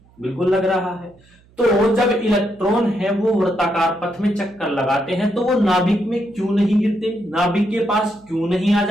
बिल्कुल लग रहा है। तो जब इलेक्ट्रॉन है वो वृत्ताकार पथ में चक्कर लगाते हैं तो वो नाभिक में क्यों नहीं गिरते, नाभिक के पास क्यों नहीं आ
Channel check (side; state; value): right; noise; hum, 30 dB below the sound